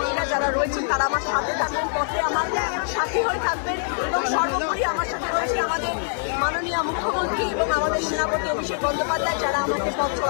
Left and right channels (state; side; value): silent; right; 61 dB below the other